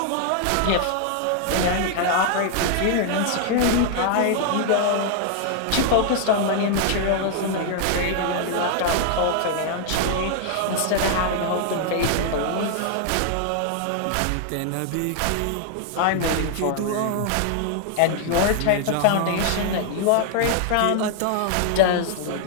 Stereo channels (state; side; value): different; both; correlation 0.00